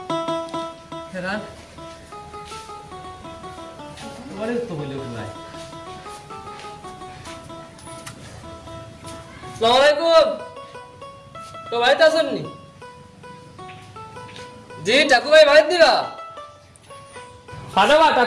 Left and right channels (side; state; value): both; identical; correlation 1.00